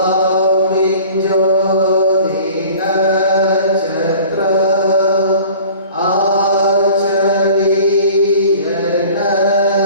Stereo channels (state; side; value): inverted; both; correlation -0.45